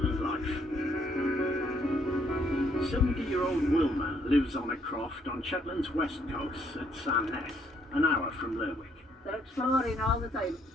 life. 70-year-old Wilma lives on a croft on Shetland's west coast at Sandnes, an hour from Lerwick. They're exploring all the time.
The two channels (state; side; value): normal; both; correlation 0.69